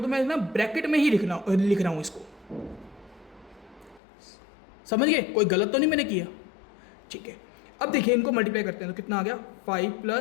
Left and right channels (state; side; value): drops out; right; at 4.0 s